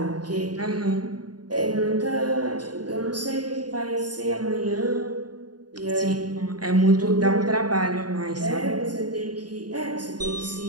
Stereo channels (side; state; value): left; late; 0.69 ms